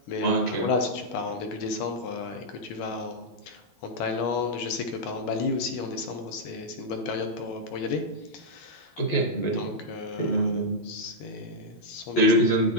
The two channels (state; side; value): late; right; 12 ms